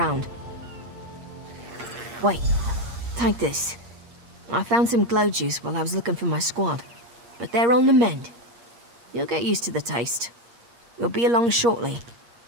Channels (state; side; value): late; left; 8.5 ms